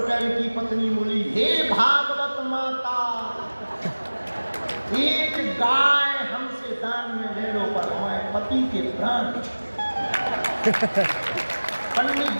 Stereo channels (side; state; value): both; inverted; correlation -1.00